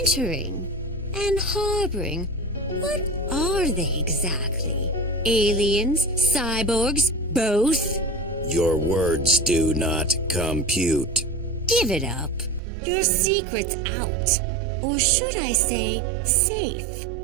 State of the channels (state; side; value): drops out; left; at 12.6 s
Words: and harboring. What are they exactly? Aliens? Cyborgs? Both? Your words do not compute. Give it up. Your secret's out. Or should I say, safe?